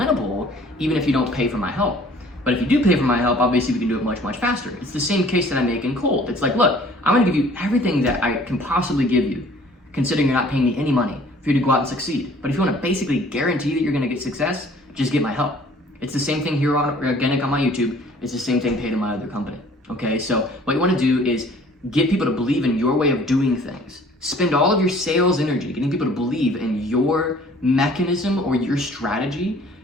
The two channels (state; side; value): normal; both; correlation 0.53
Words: even if you don't pay for my help. But if you do pay for my help, obviously we can do it much, much faster. It's the same case that I make in cold. It's like, look, I'm gonna give you everything that I can possibly give you, considering you're not paying me any money. for you to go out and succeed. But if you want to basically guarantee that you're going to get success, just get my help. It's the same thing here on Organic on my YouTube. It's the same thing paid in my other company. Okay, so what you want to do is get people to believe in your way of doing things. Spend all of your sales energy getting people to believe in your mechanism or your strategy,